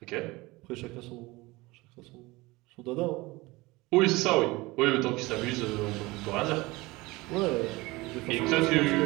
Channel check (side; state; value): left; quieter; 21.9 dB